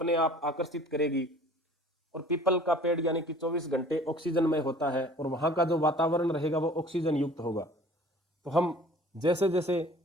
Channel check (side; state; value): both; normal; correlation 0.49